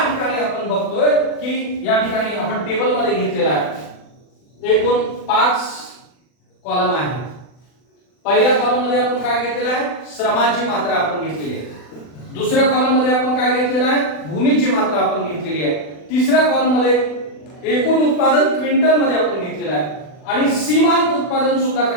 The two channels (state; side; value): late; right; 40 ms